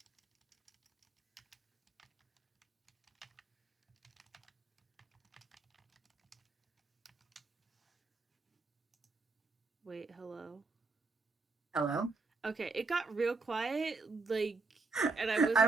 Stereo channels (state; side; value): quieter; left; 3.9 dB